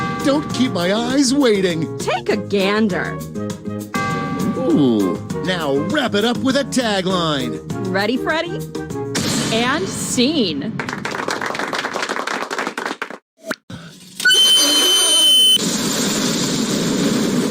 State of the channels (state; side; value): identical; both; correlation 1.00